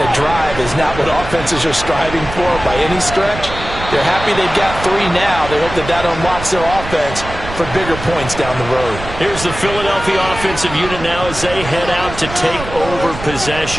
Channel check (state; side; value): noise; right; rumble, 10 dB below the sound